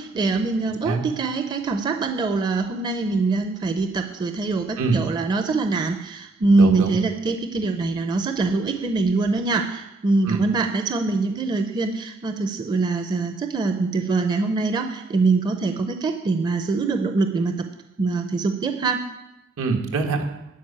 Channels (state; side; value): quieter; left; 3.3 dB